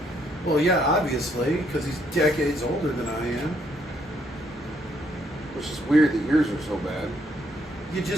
Well, yeah, obviously, because he's decades older than I am. Which is weird that yours are so bad. You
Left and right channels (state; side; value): normal; both; correlation 0.71